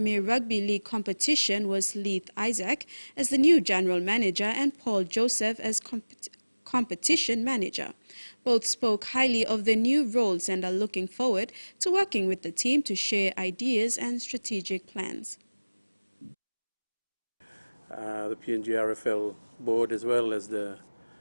Rugby League competition was Leith Isaac as the new general manager and Paul Joseph as competition manager. Both spoke highly of the new roles and are looking forward to working with the team to share ideas and strategic plans. The PNG RFL board, as well as the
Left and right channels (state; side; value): inverted; both; correlation -1.00